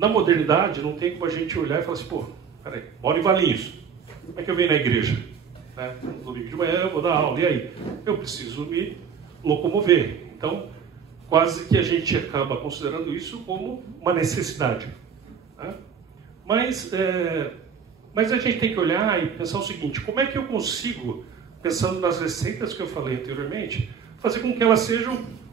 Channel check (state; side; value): quieter; left; 6.8 dB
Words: modernidade, não tem como a gente olhar e falar assim, peraí, moro em Valinhos, como é que eu venho na igreja? Né? No domingo de manhã eu vou dar aula, e aí? Eu preciso me locomover. Então, quase que a gente acaba considerando isso como uma necessidade. Né? Mas a gente tem que olhar e pensar o seguinte, como é que eu consigo, pensando nas receitas que eu falei anteriormente, fazer com que elas sejam,